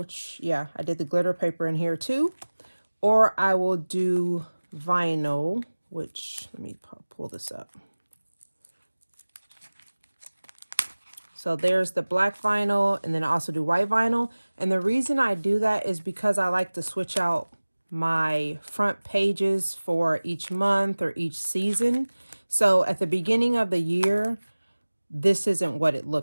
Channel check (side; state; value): both; inverted; correlation -1.00